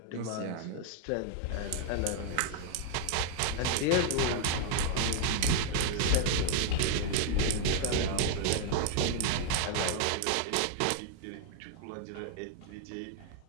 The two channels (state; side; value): different; both; correlation 0.00